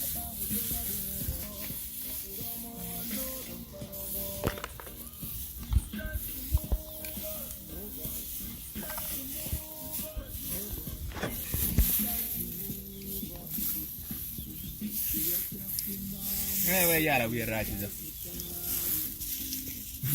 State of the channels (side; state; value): both; identical; correlation 1.00